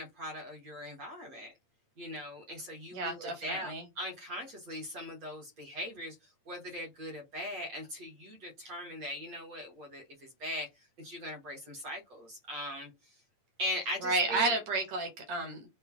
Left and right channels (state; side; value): late; left; 8.7 ms